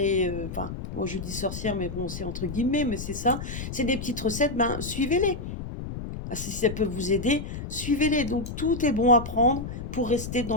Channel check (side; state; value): left; noise; rumble, 7 dB below the sound